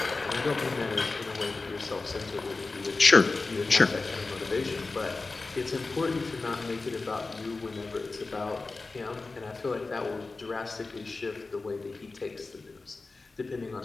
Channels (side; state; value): right; quieter; 3.7 dB